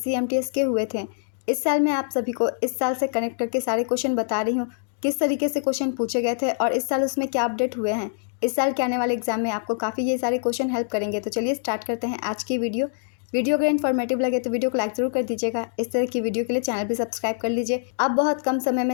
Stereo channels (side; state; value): right; silent; digital silence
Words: एमटीएस के हुए थे। इस साल मैं आप सभी को इस साल से कनेक्ट करके सारे क्वेश्चन बता रही हूँ किस तरीके से क्वेश्चन पूछे गए थे और इस साल उसमें क्या अपडेट हुए हैं। इस साल के आने वाले एग्जाम में आपको काफ़ी ये सारे क्वेश्चन हेल्प करेंगे। तो चलिए स्टार्ट करते हैं आज की वीडियो। वीडियो अगर इन्फॉर्मेटिव लगे तो वीडियो को लाइक जरूर कर दीजिएगा। इस तरह की वीडियो के लिए चैनल भी सब्सक्राइब कर लीजिए। आप बहुत कम समय